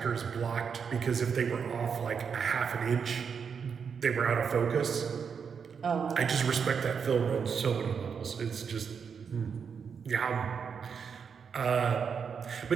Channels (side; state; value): left; quieter; 6.5 dB